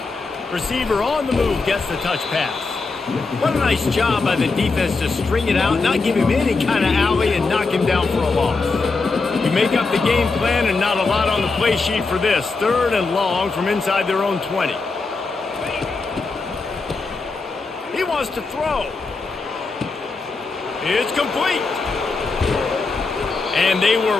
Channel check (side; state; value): right; quieter; 4.0 dB